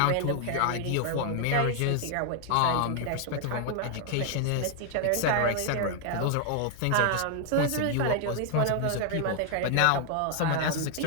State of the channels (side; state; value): both; different; correlation 0.00